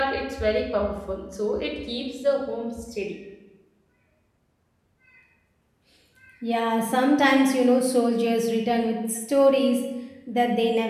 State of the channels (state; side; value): identical; both; correlation 1.00